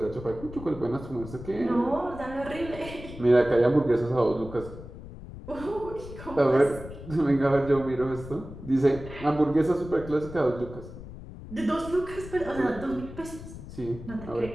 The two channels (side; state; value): left; noise; rumble, 13 dB below the sound